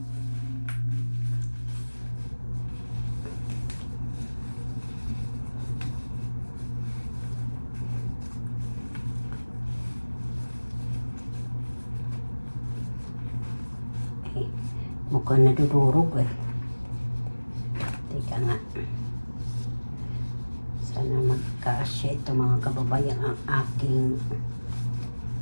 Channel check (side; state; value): both; inverted; correlation -1.00